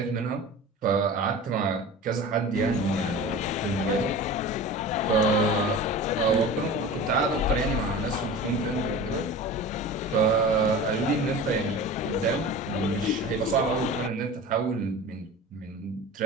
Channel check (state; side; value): normal; both; correlation 0.35